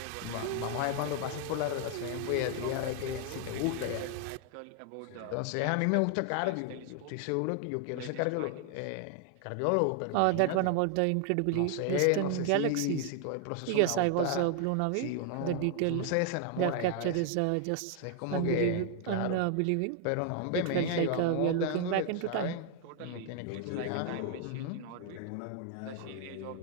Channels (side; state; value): both; different; correlation 0.00